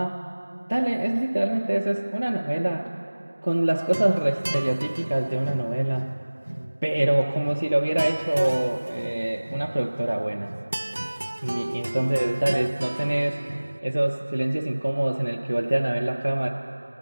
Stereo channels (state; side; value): inverted; both; correlation -1.00